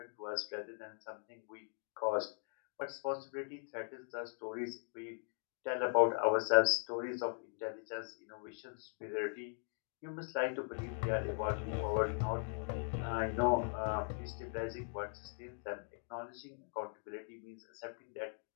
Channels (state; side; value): silent; right; 51 dB below the other